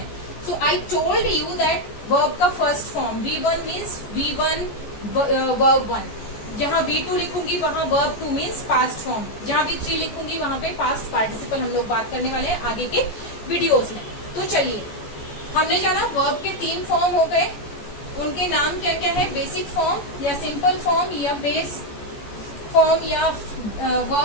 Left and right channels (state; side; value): late; right; 14 ms